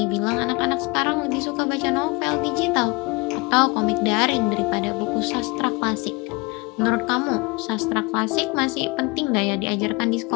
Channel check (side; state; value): right; quieter; 27.0 dB